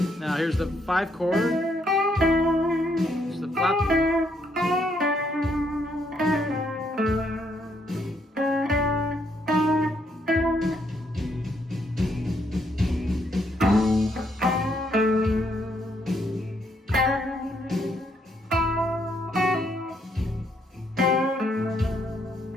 Now here's the 5 chord. Here's the flat.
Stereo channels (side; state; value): both; normal; correlation 0.73